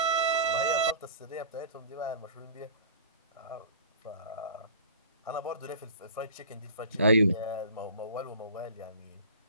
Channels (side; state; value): both; inverted; correlation -0.41